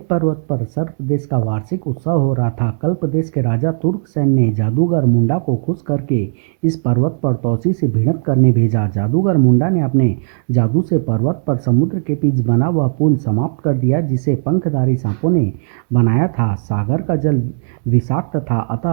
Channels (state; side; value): silent; left; digital silence